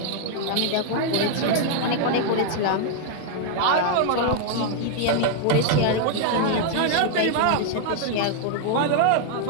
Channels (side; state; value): both; different; correlation 0.00